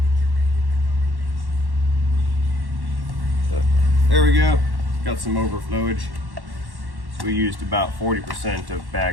There we go. Got some overflowage. So we used about 40% of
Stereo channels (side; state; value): left; late; 1.1 ms